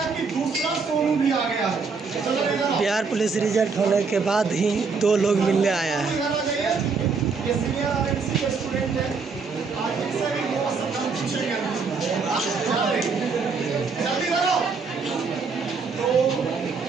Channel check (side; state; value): left; quieter; 4.9 dB